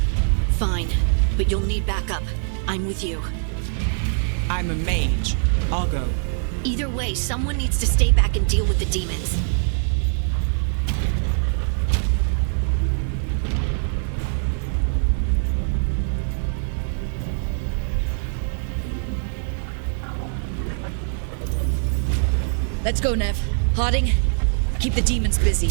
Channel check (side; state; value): left; silent; 64 dB below the other